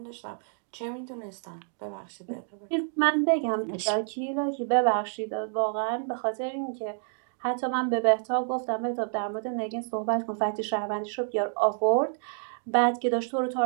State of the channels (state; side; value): silent; left; 59 dB below the other